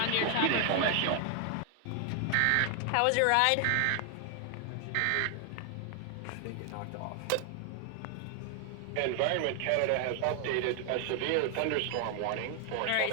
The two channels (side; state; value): both; different; correlation 0.00